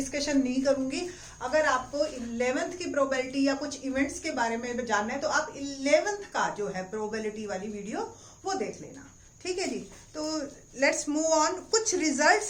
नहीं करूंगी। अगर आपको 11th की प्रोबेबिलिटी या कुछ इवेंट्स के बारे में जानना है तो आप 11th का जो है प्रोबेबिलिटी वाली वीडियो वो देख लेना, ठीक है जी। तो लेट्स मूव ऑन। कुछ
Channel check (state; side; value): identical; both; correlation 1.00